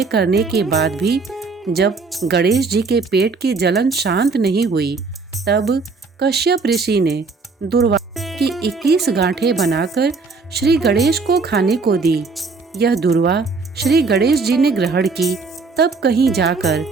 करने के बाद भी जब गणेश जी के पेट की जलन शांत नहीं हुई, तब कश्यप ऋषि ने दूर्वा की 21 गांठें बनाकर श्री गणेश को खाने को दी। यह दूर्वा श्री गणेश जी ने ग्रहण की, तब कहीं जाकर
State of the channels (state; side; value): quieter; left; 4.3 dB